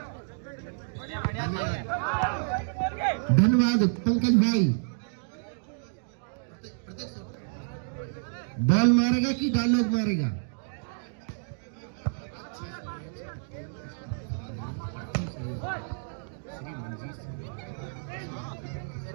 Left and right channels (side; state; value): left; silent; digital silence